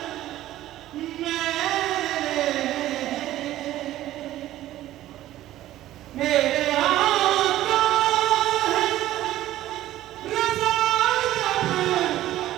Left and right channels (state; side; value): quieter; left; 14.3 dB